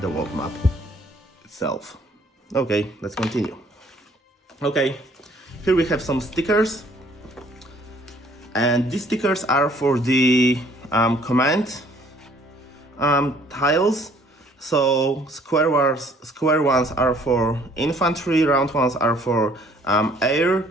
world map itself. Okay, let's continue. Okay, here we have some stickers, and these stickers are for the command tiles. So square ones are for infantry, round ones are for air,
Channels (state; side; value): normal; both; correlation 0.59